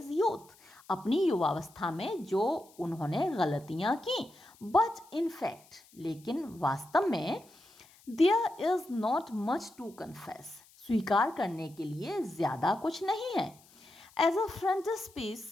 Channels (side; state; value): left; noise; hiss, 27 dB below the sound